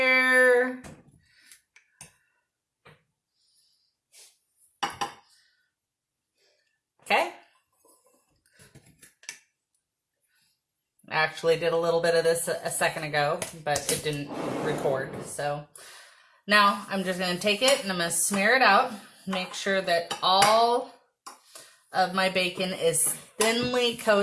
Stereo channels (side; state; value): both; identical; correlation 1.00